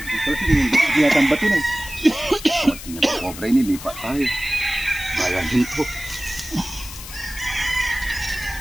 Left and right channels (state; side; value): noise; left; hiss, 13 dB below the sound